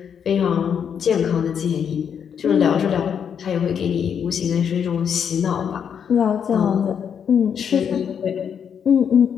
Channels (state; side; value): quieter; right; 7.7 dB